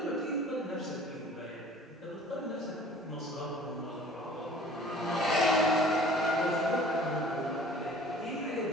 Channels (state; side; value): normal; both; correlation 0.49